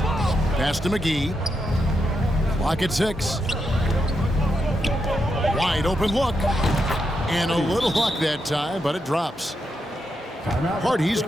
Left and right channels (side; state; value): both; normal; correlation 0.84